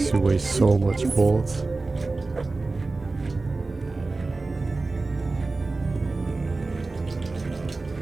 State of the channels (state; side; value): quieter; left; 3.5 dB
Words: you waste so much bullets.